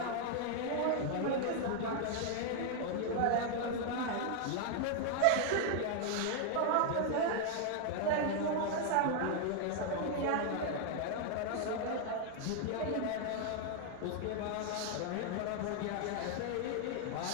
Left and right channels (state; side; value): different; both; correlation 0.00